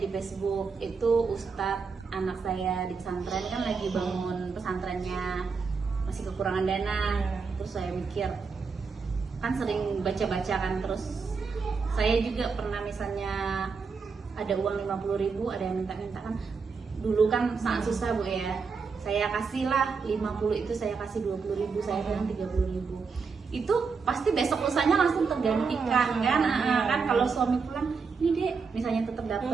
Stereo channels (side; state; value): left; quieter; 5.1 dB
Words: Facebook itu Ustadz anak saya di pesantren kan lagi bangun pesantrennya, masih kekurangan dana. Terus saya mikir, kan sering baca-baca kan, terus saya juga pernah misalnya ada uang 50.000, ada yang minta-minta kan, dulu kan sangat susah Bu ya, saya kasih lah 50 itu, saya kasih 20.000, saya bilang 30.000, itu pasti besok lusanya langsung tergantikan kan. Kan kalau suami pulang, ini dek misalnya tetap